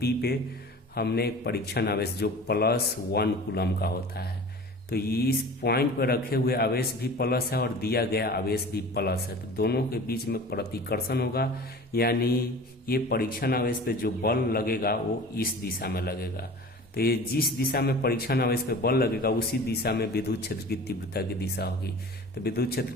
पे हमने एक परीक्षण आवेश जो +1 कूलम का होता है, तो इस पॉइंट पर रखे हुए आवेश भी प्लस है और दिया गया आवेश भी प्लस है, तो दोनों के बीच में प्रतिकर्षण होगा। यानी ये परीक्षण आवेश पे जो बल लगेगा वो इस दिशा में लगेगा। तो ये जिस दिशा में परीक्षण आवेश पे बल लगेगा उसी दिशा में विद्युत क्षेत्र की तीव्रता की दिशा होगी। तो विद्युत क्षेत्र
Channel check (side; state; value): both; normal; correlation 0.40